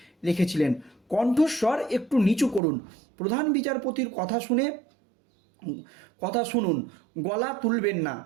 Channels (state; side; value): drops out; left; at 2.6 s